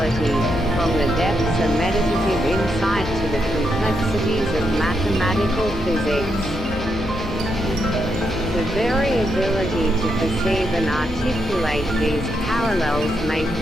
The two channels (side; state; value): both; normal; correlation 0.81